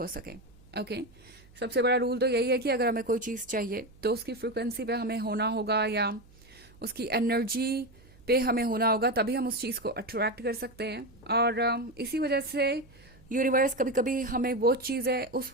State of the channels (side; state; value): right; noise; hum, 25 dB below the sound